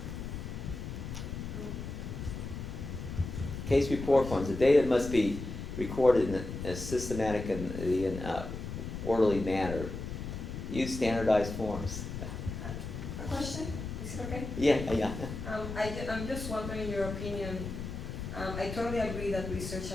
Case report forms. The data must be recorded in a systematic and orderly manner. Use standardized forms. A question? Is it okay? Yeah. I'm just wondering your opinion. I totally agree that research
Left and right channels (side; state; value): left; noise; rumble, 7 dB below the sound